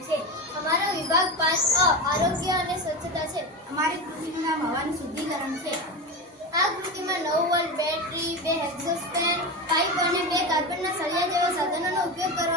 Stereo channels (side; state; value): both; normal; correlation 0.21